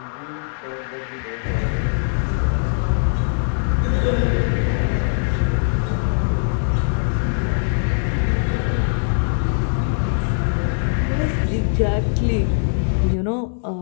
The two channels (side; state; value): right; silent; digital silence